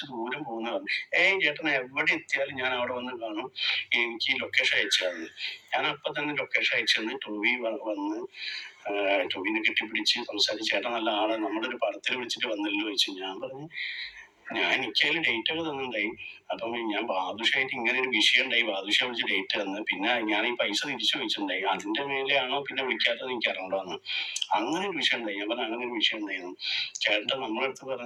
ദൂരം പോകുന്ന പറഞ്ഞു. ചേട്ടൻ എവിടെ എത്തിയാലും ഞാൻ അവിടെ വന്ന് കാണും, എനിക്ക് ലൊക്കേഷൻ അയച്ചു തന്നു. ഞാൻ അപ്പൊ തന്നെ ലൊക്കേഷൻ അയച്ചു തന്നു. ടോവി വന്ന് ടോവിനെ കെട്ടിപ്പിടിച്ച് സംസാരിച്ച്, ചേട്ടൻ നല്ല ആള്, നമ്മുടെ ഒരു പടത്തിൽ വിളിച്ചിട്ട് വന്നല്ലോ ചോദിച്ചു. ഞാൻ പറഞ്ഞു എനിക്കതിൽ ഡേറ്റ് ഒക്കെ തന്നിട്ടുണ്ടായി. അപ്പം ഞാൻ ബാദുഷായിട്ട് ഇങ്ങനെ ഒരു വിഷയം ഉണ്ടായി, ബാദുഷ വിളിച്ച് ഡേറ്റ് തന്ന്, പിന്നെ ഞാൻ ഈ പൈസ തിരിച്ചു ചോദിച്ചിട്ടുണ്ടായി, അതിന്റെ മേലെയാണോ പിന്നെ വിളിക്കാത്തത് എനിക്ക് അറിയണ്ടെന്ന്. അങ്ങനെ ഒരു വിഷയം ഉണ്ടായി. ഞാൻ പറഞ്ഞു അങ്ങനെ ഒരു വിഷയം ഉണ്ടായിരുന്നു. ചേട്ടൻ നമ്മളെ അടുത്ത്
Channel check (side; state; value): both; identical; correlation 1.00